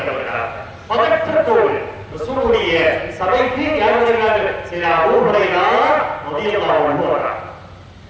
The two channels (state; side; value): identical; both; correlation 1.00